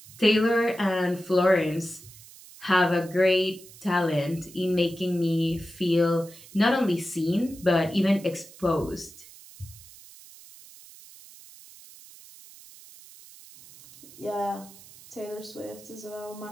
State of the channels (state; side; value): noise; right; hiss, 20 dB below the sound